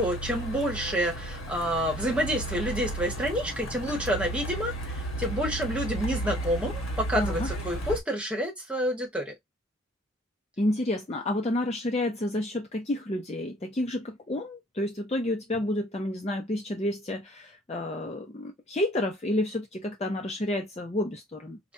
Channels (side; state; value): both; normal; correlation 0.56